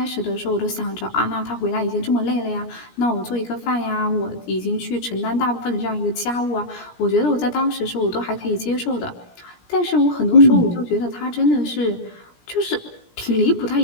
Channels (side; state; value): right; late; 17 ms